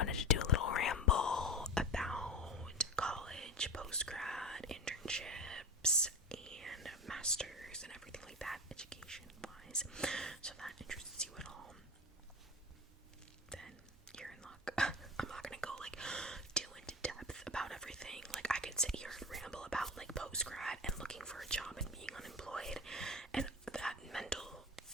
to do a little ramble about college, post-grad, internships, and masters, and everything like that, education-wise. So if that interests you at all, then you're in luck. I'm not gonna go too into depth about everything. I could sit here and ramble about post-grad and looking for a job and being unemployed and that mental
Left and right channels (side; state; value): both; normal; correlation 0.28